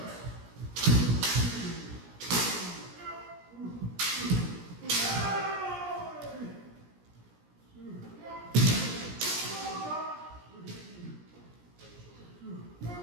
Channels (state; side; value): late; left; 17 ms